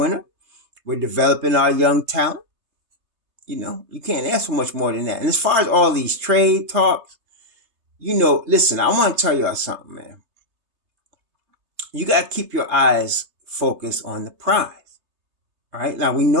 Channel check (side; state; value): left; late; 3.3 ms